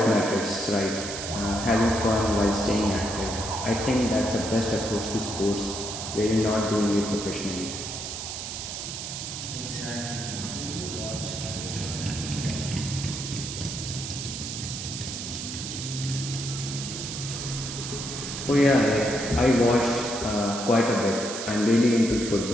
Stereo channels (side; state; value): right; noise; hiss, 6 dB below the sound